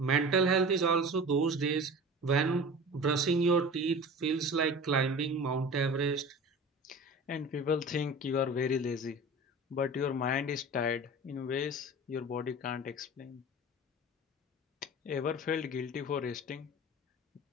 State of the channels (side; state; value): both; normal; correlation 0.36